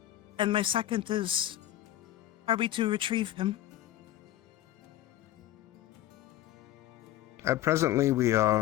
And my second is, are we to retrieve him? Presently, we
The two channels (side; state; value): right; quieter; 13.8 dB